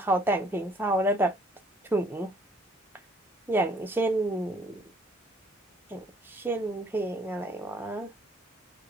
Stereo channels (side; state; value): both; normal; correlation 0.61